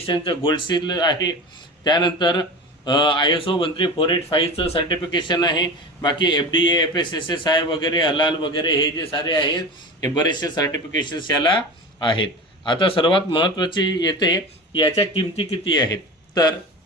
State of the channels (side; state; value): both; normal; correlation 0.30